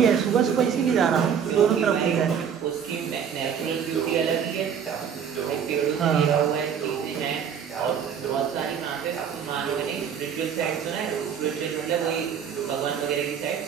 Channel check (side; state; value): left; quieter; 7.7 dB